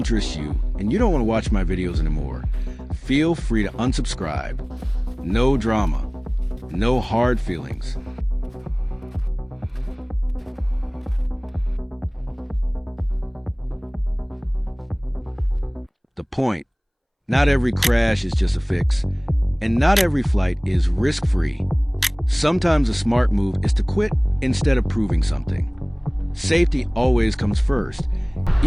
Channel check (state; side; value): identical; both; correlation 1.00